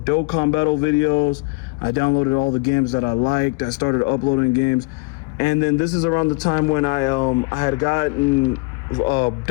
Dokkan battle videos. I downloaded all the games that I liked. I started uploading games. And then this is around the time when I had gotten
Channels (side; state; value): right; quieter; 28.2 dB